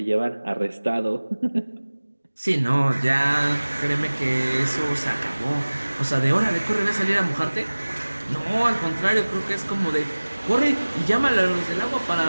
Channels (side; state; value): both; inverted; correlation -1.00